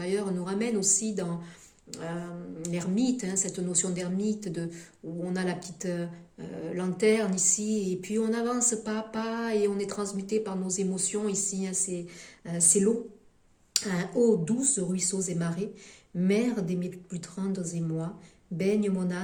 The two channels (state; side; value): identical; both; correlation 1.00